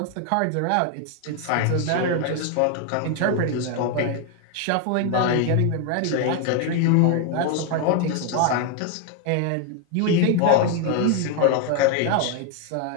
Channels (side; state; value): both; different; correlation 0.01